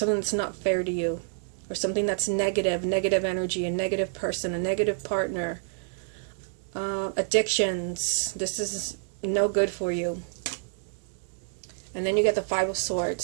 that's not fair to you, or something that's negative energy, a negative person, a negative partner, addictions. This is no good for you. And then you get the Five of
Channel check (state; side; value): silent; left; digital silence